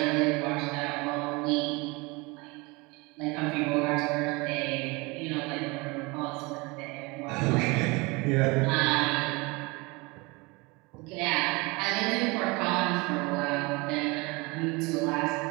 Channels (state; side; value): quieter; left; 25.7 dB